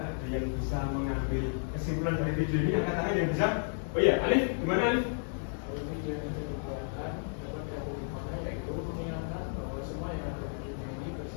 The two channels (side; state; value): right; silent; digital silence